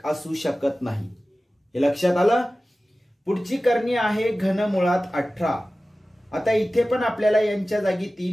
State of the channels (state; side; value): normal; both; correlation 0.96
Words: असू शकत नाही. हे लक्षात आलं. पुढची करणी आहे घनमुळात 18. आता इथे पण आपल्याला यांच्या जागी